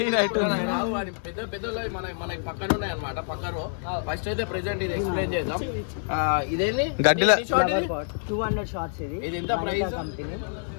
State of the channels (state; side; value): silent; right; digital silence